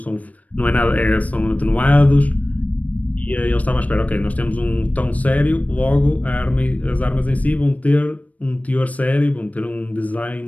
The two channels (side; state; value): right; late; 0.071 ms